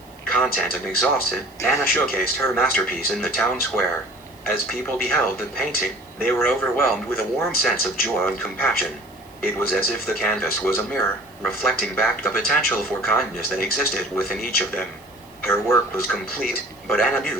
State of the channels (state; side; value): noise; right; hiss, 28 dB below the sound